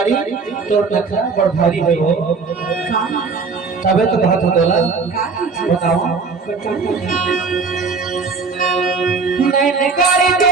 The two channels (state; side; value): quieter; left; 4.7 dB